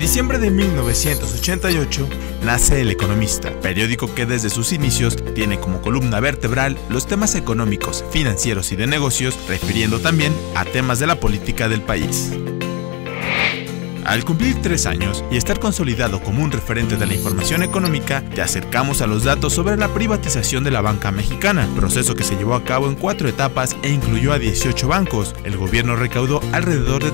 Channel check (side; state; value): right; quieter; 28.7 dB